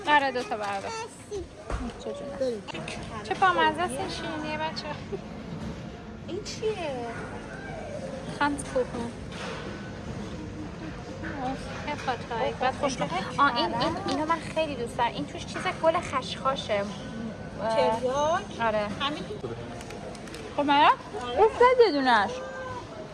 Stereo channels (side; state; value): both; identical; correlation 1.00